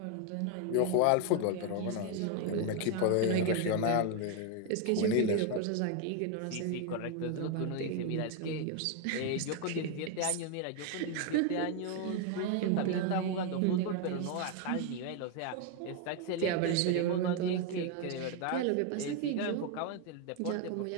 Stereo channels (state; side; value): different; both; correlation 0.01